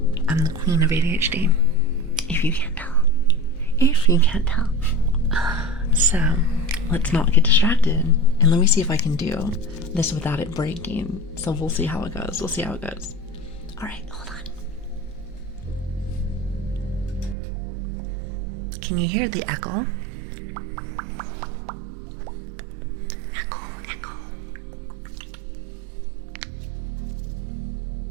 am the queen of ADHD, if you can't tell. So, let's not get distracted, and let me see if I can do this without it breaking. So we'll see how it goes. Alright, hold on. Can you hear the echo? Echo.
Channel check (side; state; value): left; drops out; at 17.4 s